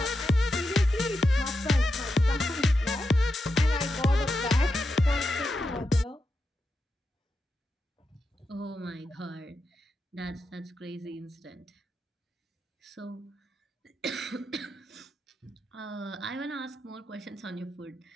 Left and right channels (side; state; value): both; normal; correlation 0.87